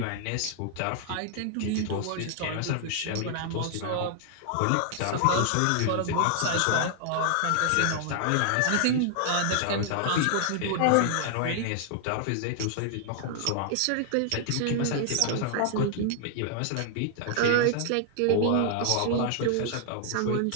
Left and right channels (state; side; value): different; both; correlation 0.00